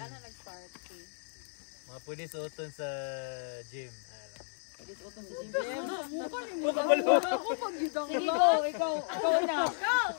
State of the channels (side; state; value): right; silent; 55 dB below the other